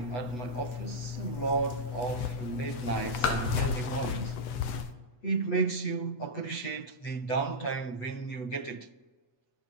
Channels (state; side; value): late; right; 8.1 ms